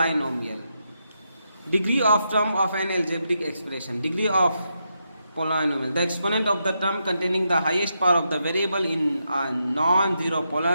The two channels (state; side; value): inverted; both; correlation -0.83